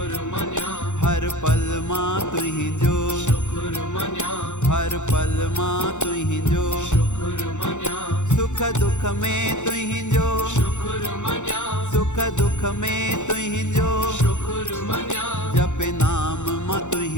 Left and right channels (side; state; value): right; late; 0.84 ms